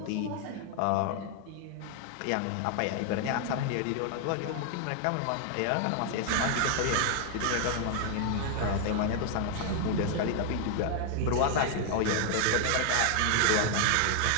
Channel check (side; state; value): both; different; correlation 0.00